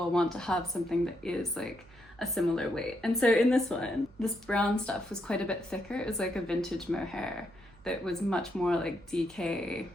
want to have something that is like a similar weight. And so in this one, this brown stuff was quite a bit thicker. It was like a vintage mohair that was much more like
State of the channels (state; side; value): noise; right; hum, 24 dB below the sound